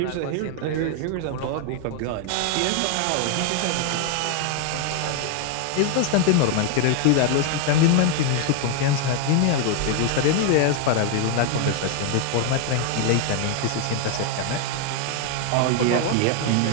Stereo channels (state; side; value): different; both; correlation 0.00